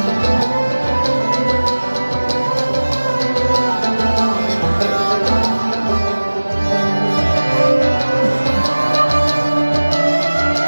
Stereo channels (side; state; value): both; inverted; correlation -1.00